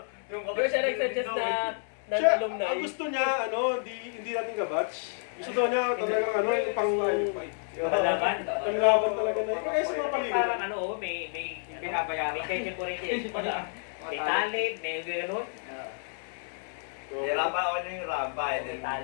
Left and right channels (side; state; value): right; silent; digital silence